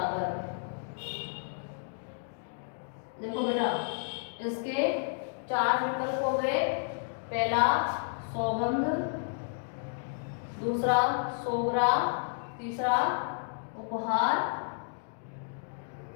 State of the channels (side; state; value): right; silent; digital silence